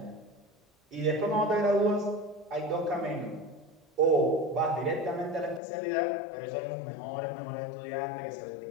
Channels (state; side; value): drops out; right; at 5.6 s